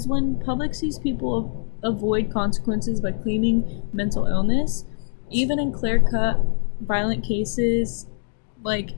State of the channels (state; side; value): silent; right; digital silence